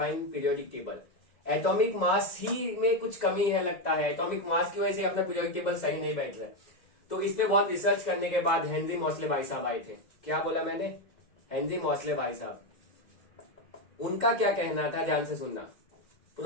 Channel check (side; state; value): right; late; 2.1 ms